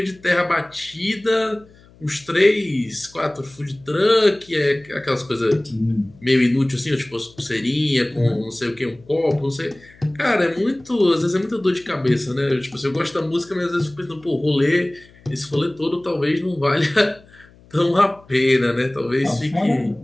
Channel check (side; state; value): left; noise; hum, 26 dB below the sound